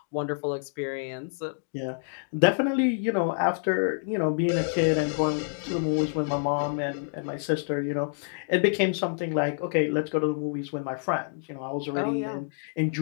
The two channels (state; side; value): silent; right; digital silence